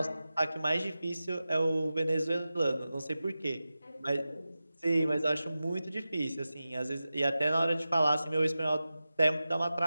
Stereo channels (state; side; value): inverted; both; correlation -0.94